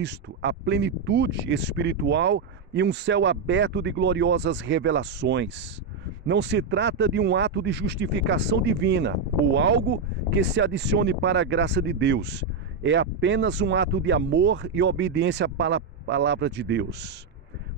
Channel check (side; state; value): left; quieter; 4.8 dB